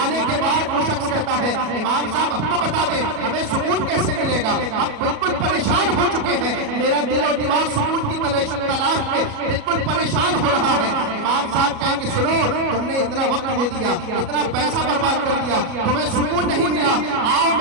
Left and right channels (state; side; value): late; left; 37 ms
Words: آنے کے بعد وہ شخص کہتا ہے امام صاحب اب تو بتا دیں ہمیں سکون کیسے ملے گا, ہم بالکل پریشان ہو چکے ہیں, میرا دل و دماغ سکون کی تلاش میں بالکل پریشان ہو رہا ہے. امام صاحب کہیں کہ سنو, تم نے اتنا وقت دے دیا, اتنا پیسہ برباد کر دیا, تمہیں سکون نہیں ملا, آؤ